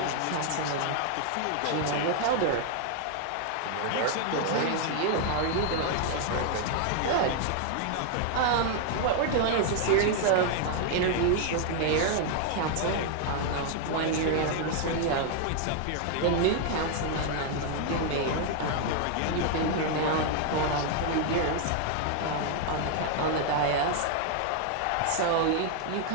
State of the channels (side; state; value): both; different; correlation 0.00